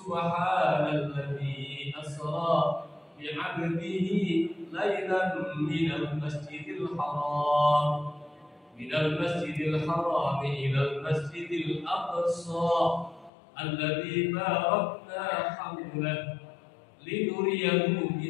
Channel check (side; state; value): right; drops out; at 13.3 s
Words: asra bi'abdihi lailan minal masjidil haram ilal masjidil aqsa alladzi barakna hawlahu linuriyahu